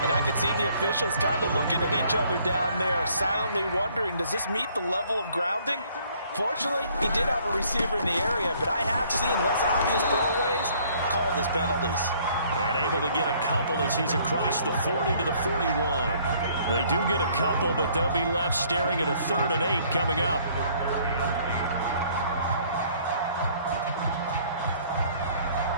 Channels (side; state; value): both; inverted; correlation -0.61